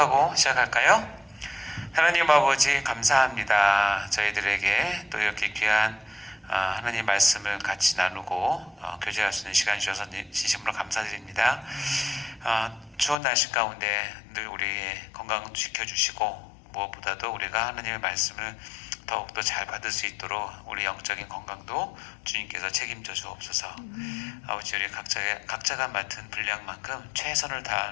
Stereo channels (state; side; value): drops out; right; at 13.2 s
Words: 시작할까요? 하나님 아버지 감사합니다. 저희들에게 또 이렇게 귀한 하나님 말씀을 같이 나누고 교제할 수 있는 시간 주셔서 진심으로 감사드립니다. 추운 날씨 가운데 늘 우리의 건강 지켜주시고 무엇보다도 우리가 하나님의 말씀을 더욱더 잘 받을 수 있도록 우리 영적인 건강도 주님께서 책임져 주옵소서. 아버지, 우리 각자가 맡은 분량만큼 최선을